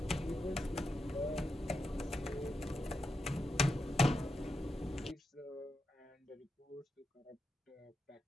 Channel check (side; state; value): both; normal; correlation 0.86